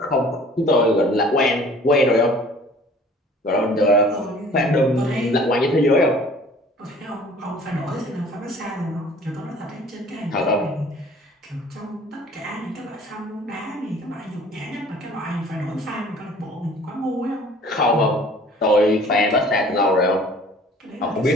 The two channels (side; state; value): both; normal; correlation 0.50